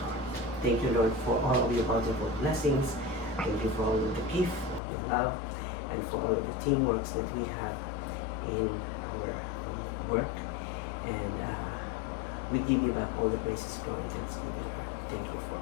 Thank you, Lord, for all of your bountiful blessings. Thank you for all of the gift of your love and for all of the teamwork that we have in our work. And we give you back all the praises, glory, and thanksgiving. Thank you for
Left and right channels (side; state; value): right; drops out; at 4.8 s